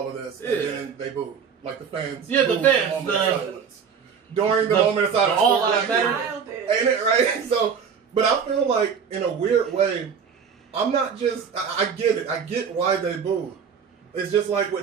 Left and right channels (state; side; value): quieter; left; 6.7 dB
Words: of this. And then they booed. Like the fans. Yeah, the booed fans. The moment of silence. During the moment of silence. All that matters. Ain't it, right? So, but I feel like, in a weird way, I'm not just, I get it. I get why they booed. It's just like